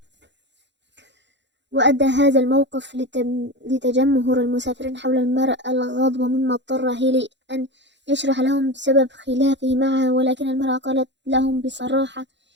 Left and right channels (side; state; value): left; late; 0.52 ms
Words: وأدى هذا الموقف لتجمهر المسافرين حول المرأة الغاضبة، مما اضطر هيلي أن يشرح لهم سبب خلافه معها، ولكن المرأة قالت لهم بصراحة: